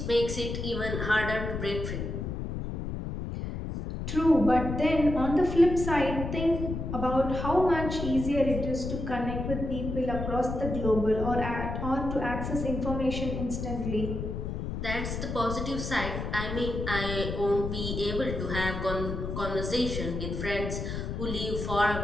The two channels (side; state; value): left; noise; rumble, 4 dB below the sound